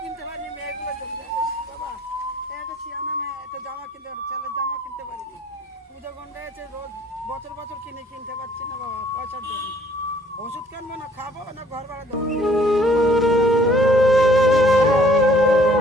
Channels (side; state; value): both; normal; correlation 0.59